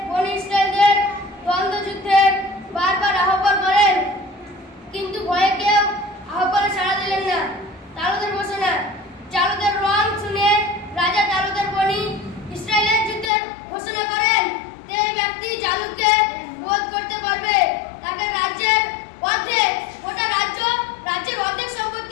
বনী ইসরায়েলদের দ্বন্দ্ব যুদ্ধের বারবার আহ্বান করেন, কিন্তু ভয়ে কেউ আহ্বানে সাড়া দিলেন না। তালুদের ঘোষণা। জালুদের রং শুনে রাজা তালুদের বনী ইসরায়েলের যুদ্ধের ঘোষণা করেন। যে ব্যক্তি জালুদকে রোধ করতে পারবে তাকে রাজ্যের অর্ধেক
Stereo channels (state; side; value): drops out; right; at 13.3 s